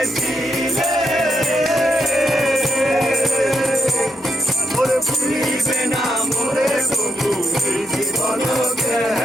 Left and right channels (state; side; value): normal; both; correlation 0.82